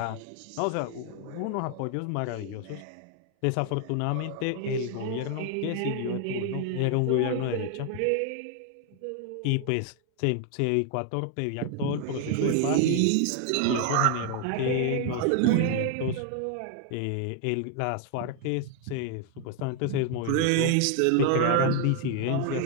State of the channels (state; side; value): different; both; correlation 0.00